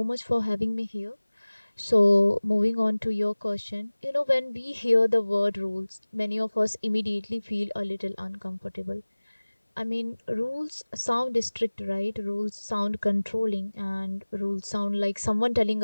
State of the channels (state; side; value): inverted; both; correlation -1.00